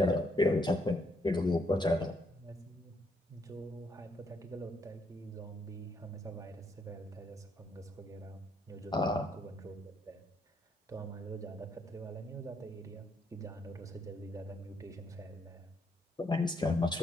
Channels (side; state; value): both; normal; correlation 0.73